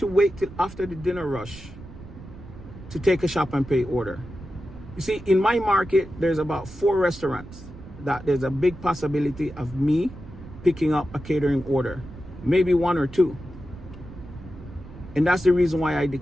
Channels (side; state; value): right; noise; rumble, 16 dB below the sound